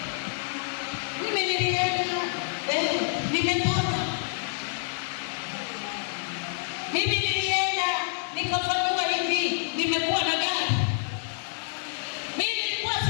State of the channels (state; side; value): silent; right; digital silence